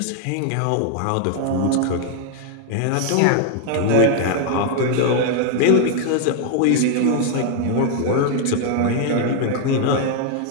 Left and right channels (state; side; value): different; both; correlation 0.00